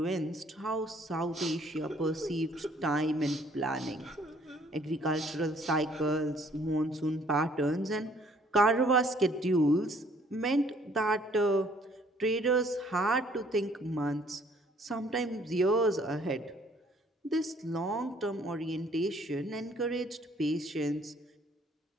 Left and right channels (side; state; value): both; normal; correlation 0.61